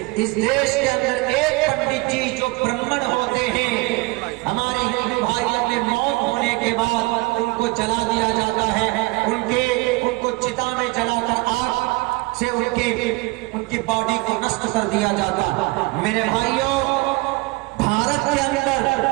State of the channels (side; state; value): left; quieter; 24.5 dB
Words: اس دیش کے اندر ایک پنڈت جی جو برہمن ہوتے ہیں، ہمارے ہندو بھائیوں میں موت ہونے کے بعد ان کو جلا دیا جاتا ہے، ان کو چتا میں جلا کر آگ سے ان کی باڈی کو نشٹ کر دیا جاتا. میرے بھائیوں، بھارت کے اندر